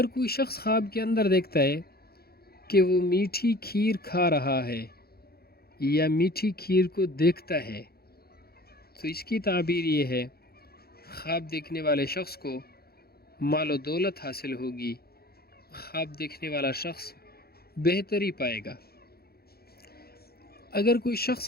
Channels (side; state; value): right; late; 0.45 ms